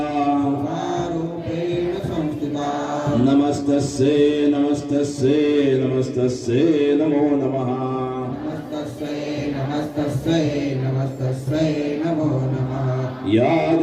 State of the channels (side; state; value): both; identical; correlation 1.00